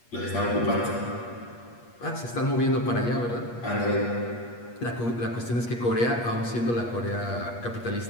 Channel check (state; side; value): late; right; 8.4 ms